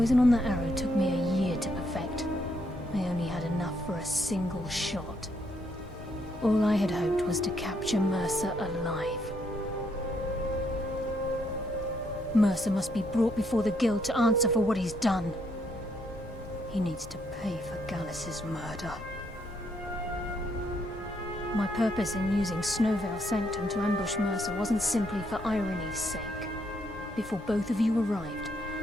on that arrow took me a year to perfect. I only had enough for a single shot. All I had hoped was to capture Mercer alive. Mercer must be brought before the Guild to answer for what he's done. He needs to pay for Gallus's murder. My purpose in using Snowvale Sanctum to ambush Mercer wasn't simply for irony's sake. Before both of you arrived,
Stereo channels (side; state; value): both; normal; correlation 0.74